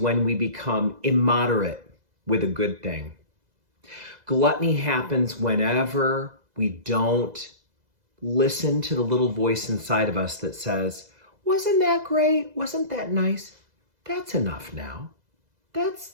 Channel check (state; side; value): late; left; 2.0 ms